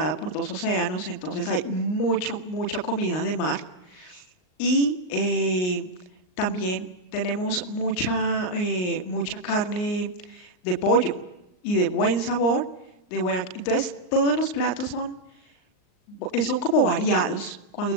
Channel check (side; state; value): right; late; 38 ms